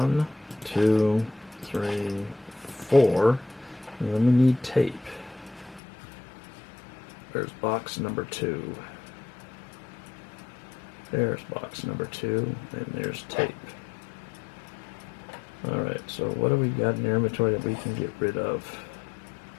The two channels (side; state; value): right; drops out; at 5.8 s